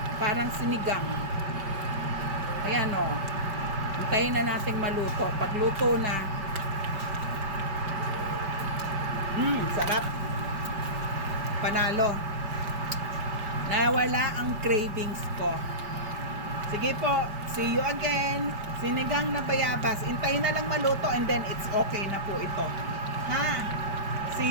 Parang sinigang. Ayan, hintayin na natin maluto. Pag luto na, sarap. Panalo. Nawala ang cravings ko. Sige po, see you again. Sinigang na bayabas. Intayin na lang maluto and then it's okay na po ito. Ha?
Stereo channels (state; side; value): late; left; 5.1 ms